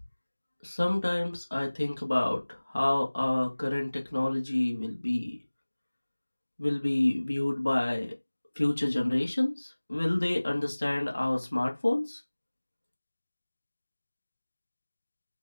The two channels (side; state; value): both; inverted; correlation -1.00